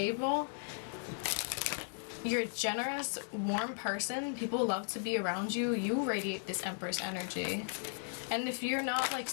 You're a generous, warm person. People love to be around you. You radiate this Empress energy. And if you're not, like,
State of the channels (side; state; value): right; silent; digital silence